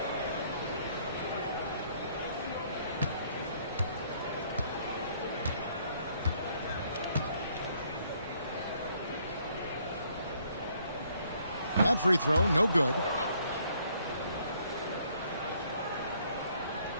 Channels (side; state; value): both; inverted; correlation -0.66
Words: That free throw, no good.